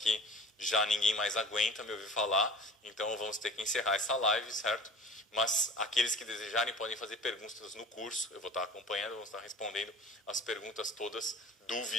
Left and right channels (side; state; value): both; normal; correlation 0.41